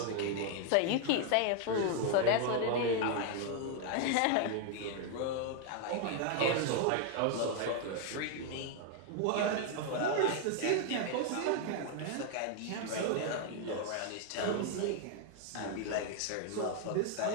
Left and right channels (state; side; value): different; both; correlation 0.00